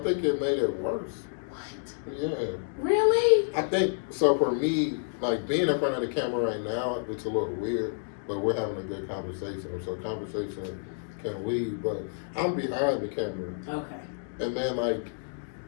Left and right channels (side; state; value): right; silent; digital silence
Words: think it made it worse. What? Yeah. Really? I think, so for me, like being in front of the camera right now, it's a little weird, but we're having a good conversation. So conversation can lead, but I'm behind the camera. Okay. And then like,